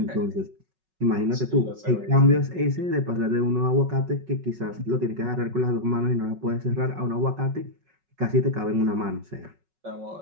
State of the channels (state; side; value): late; left; 5.4 ms